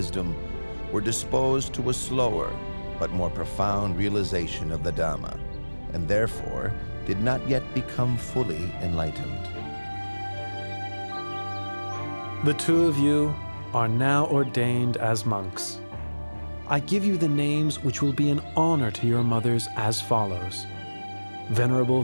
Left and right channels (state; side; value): inverted; both; correlation -1.00